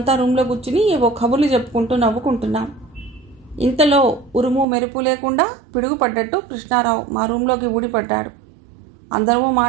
రూమ్లో కూర్చుని ఏవో కబుర్లు చెప్పుకుంటూ నవ్వుకుంటున్నాం. ఇంతలో ఉరుము మెరుపు లేకుండా పిడుగుపడ్డట్టు కృష్ణారావు మా రూమ్లోకి ఊడిపడ్డాడు. అందరము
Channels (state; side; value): drops out; left; at 4.7 s